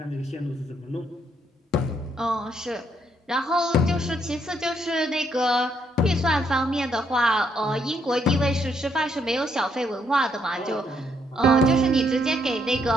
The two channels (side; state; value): both; normal; correlation 0.73